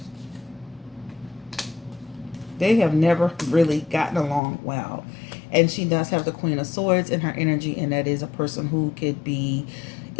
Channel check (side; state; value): right; drops out; at 4.4 s